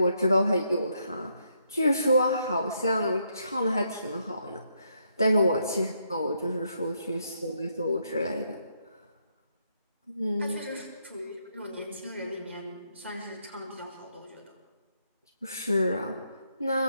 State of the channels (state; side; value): inverted; both; correlation -0.76